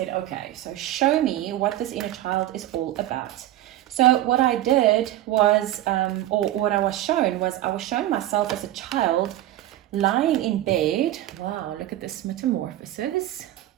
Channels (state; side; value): quieter; left; 14.2 dB